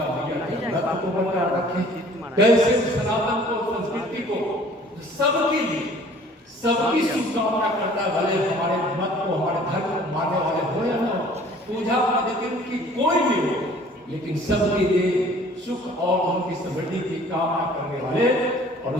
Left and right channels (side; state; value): both; normal; correlation 0.52